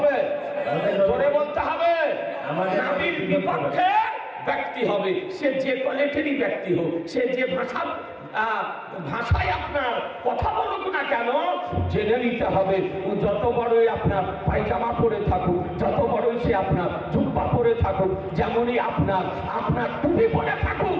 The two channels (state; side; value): identical; both; correlation 1.00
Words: জোরে বলতে হবে। নাবির বিপক্ষে ব্যক্তি হবে, সে যে কোয়ালিটিরই ব্যক্তি হোক, সে যে ভাষায় আপনার কথা বলুক না কেন, জেনে নিতে হবে যত বড়ই আপনার পায়জামা পরে থাকুক, যত বড়ই সে আপনার জুব্বা পরে থাকুক, যেমনই আপনার টুপি পরে থাকুক,